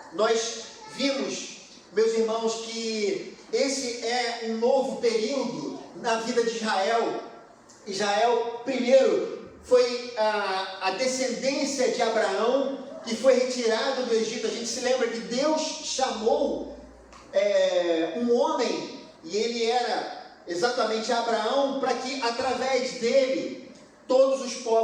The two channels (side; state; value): both; identical; correlation 1.00